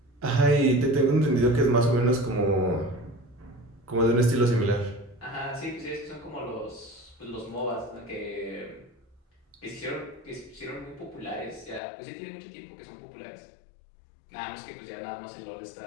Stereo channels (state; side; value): drops out; right; at 11.8 s